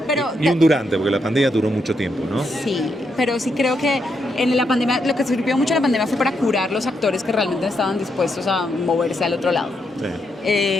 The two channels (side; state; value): both; normal; correlation 0.80